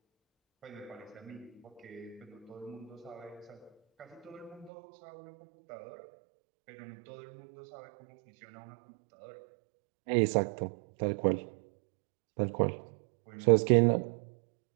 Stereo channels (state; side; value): drops out; left; at 4.7 s